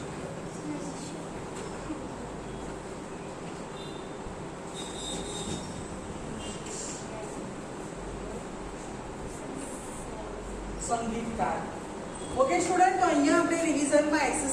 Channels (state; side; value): identical; both; correlation 1.00